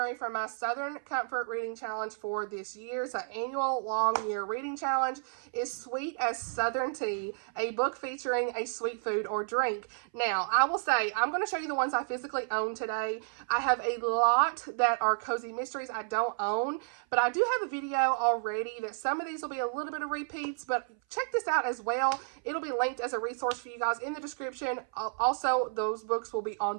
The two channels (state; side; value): silent; left; 57 dB below the other